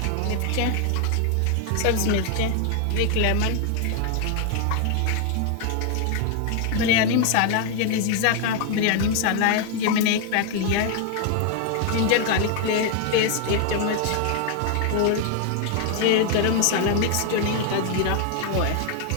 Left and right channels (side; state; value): both; different; correlation 0.00